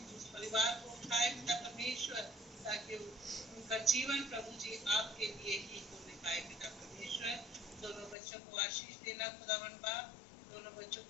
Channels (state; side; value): drops out; right; at 8.2 s